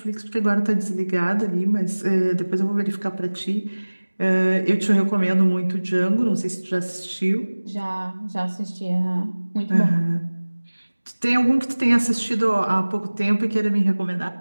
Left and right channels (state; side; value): inverted; both; correlation -1.00